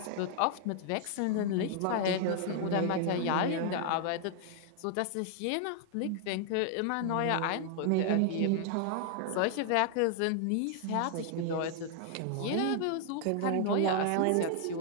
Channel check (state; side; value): different; both; correlation 0.00